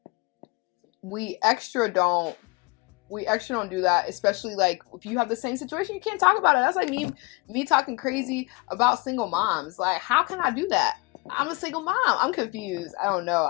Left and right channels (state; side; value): quieter; right; 26.5 dB